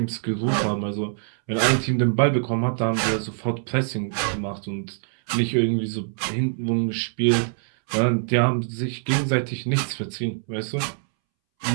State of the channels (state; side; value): silent; left; 63 dB below the other